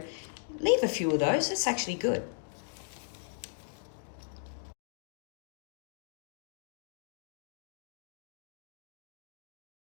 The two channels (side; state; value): right; silent; digital silence